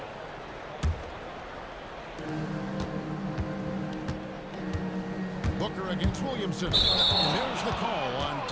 Booker against Williamson. And there's the call on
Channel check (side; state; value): both; identical; correlation 1.00